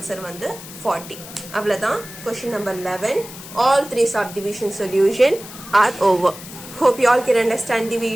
வந்து 40. அவ்வளவுதான். Question number 11. All 3 subdivision solution are over. Hope you all can understand the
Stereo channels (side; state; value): left; noise; hiss, 15 dB below the sound